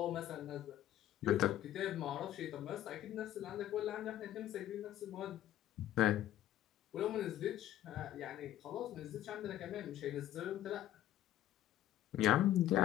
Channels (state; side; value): quieter; right; 12.9 dB